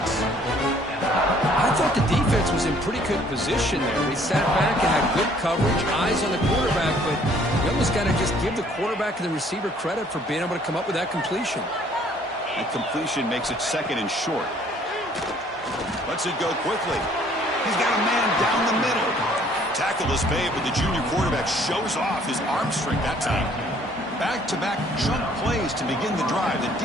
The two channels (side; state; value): both; normal; correlation 0.59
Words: I thought the defense was in pretty good position there. They sat back and had good coverage, eyes on the quarterback, but you almost got to just give the quarterback and the receiver credit for being able to come up with that completion. And completion makes it second and short. Lets it go quickly. He's got a man down the middle. Tackle is made, but the junior quarterback shows off his arm strength that time. Back-to-back jump plays to begin the drive. The